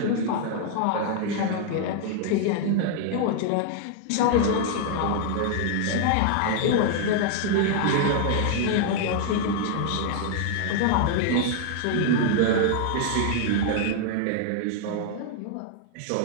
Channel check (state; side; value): different; both; correlation 0.00